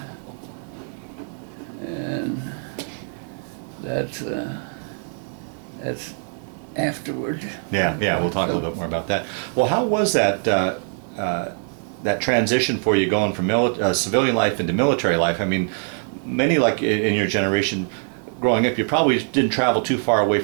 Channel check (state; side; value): silent; left; 57 dB below the other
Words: and that's afterward. Yeah, yeah, we'll talk a little bit more about that. Well, how was that that transition for you going from civilian life into military life? I mean, many like in your generation, growing up, you probably didn't travel too far away